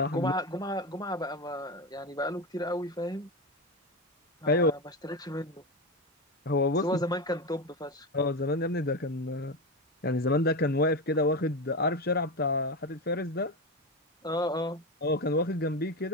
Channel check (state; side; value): normal; both; correlation 0.17